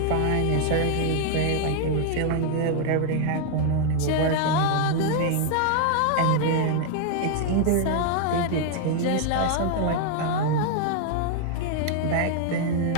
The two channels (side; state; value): both; different; correlation 0.00